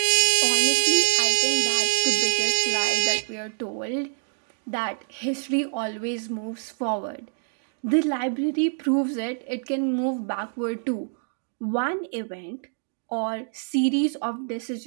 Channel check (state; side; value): silent; left; digital silence